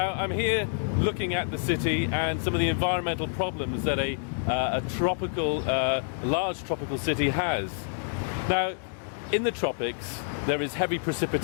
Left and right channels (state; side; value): silent; right; digital silence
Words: I'm here looking at the city and some of the environmental problems that a large tropical city has. Now in the tropics there is heavy